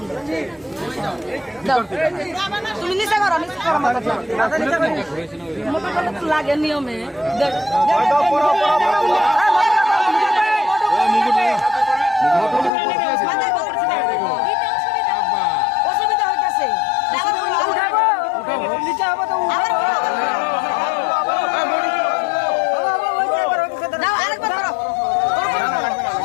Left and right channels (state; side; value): drops out; right; at 12.7 s